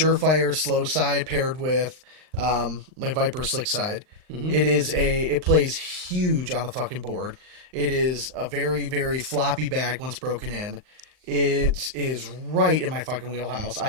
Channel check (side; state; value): left; late; 39 ms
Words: slow side paired with like Viper slick side. Mm-hmm. It plays huge on the fucking board. It is a very, very floppy bag once broken in. It is right in my fucking wheelhouse.